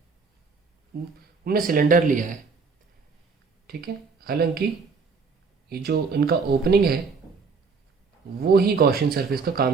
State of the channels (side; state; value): left; quieter; 4.8 dB